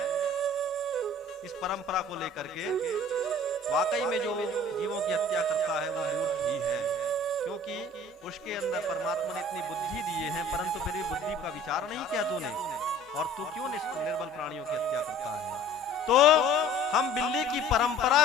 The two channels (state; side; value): normal; both; correlation 0.48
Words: इस परंपरा को लेकर के। वाकई में जो जीवों की हत्या करता है वो मूर्ख ही है, क्योंकि उसके अंदर परमात्मा ने इतनी बुद्धि दिए हैं, परंतु फिर भी बुद्धि का विचार नहीं किया तूने, और तू क्यों निर्बल प्राणियों की हत्या करता है। तो हम बिल्ली की परंपरा